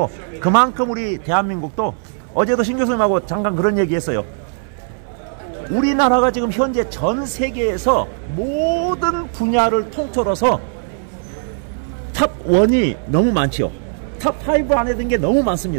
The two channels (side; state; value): left; silent; 67 dB below the other